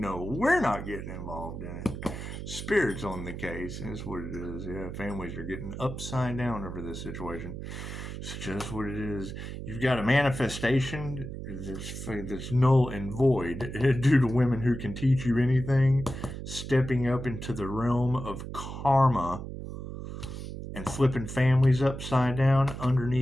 we're not getting involved in it. Spirit's on the case. That's what it is. Yeah, families are getting upside down over this situation. It's just what it is. You've got a manifestation that's null and void due to women who can teach you anything, stepping up into the realm of karma and flipping families upside down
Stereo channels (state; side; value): noise; right; hum, 8 dB below the sound